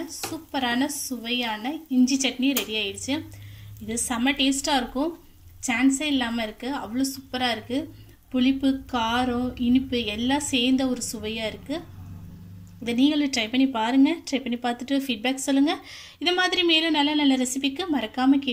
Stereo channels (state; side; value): identical; both; correlation 1.00